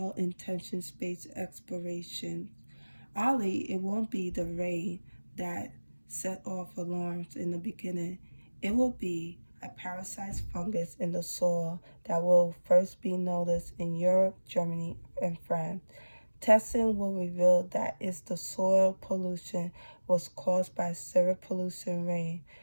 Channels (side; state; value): both; inverted; correlation -1.00